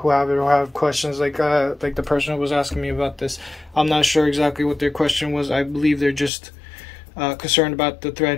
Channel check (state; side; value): drops out; right; at 6.3 s